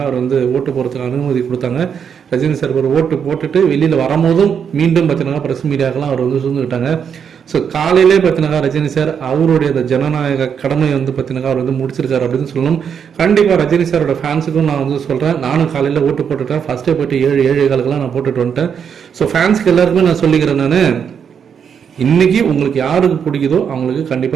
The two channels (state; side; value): quieter; left; 7.4 dB